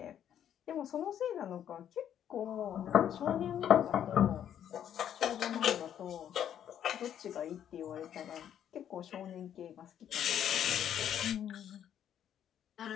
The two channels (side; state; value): right; quieter; 9.9 dB